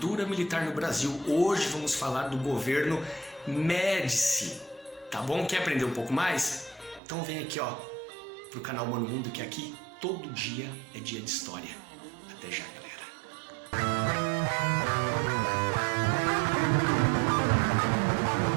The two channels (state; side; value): drops out; left; at 7.0 s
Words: Militar no Brasil. Hoje vamos falar do governo Médici, tá bom? Quer aprender um pouco mais? Então vem aqui, ó, pro canal Mano Mundo, que aqui todo dia é dia de história. Até já, galera.